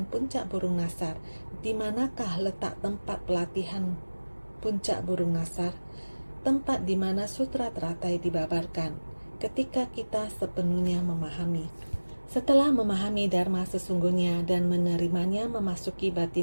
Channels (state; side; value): inverted; both; correlation -1.00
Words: puncak burung Nasar. Di manakah letak tempat pelatihan puncak burung Nasar? Tempat di mana Sutra Teratai dibabarkan. Ketika kita sepenuhnya memahami. Setelah memahami Dharma sesungguhnya dan menerimanya memasuki